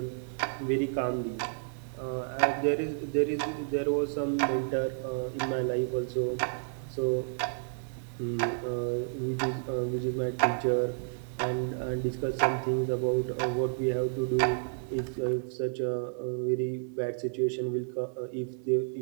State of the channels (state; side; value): silent; left; digital silence